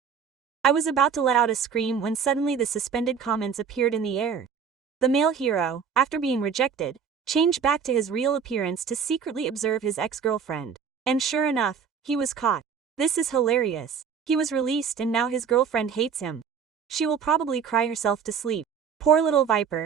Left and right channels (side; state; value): left; quieter; 6.8 dB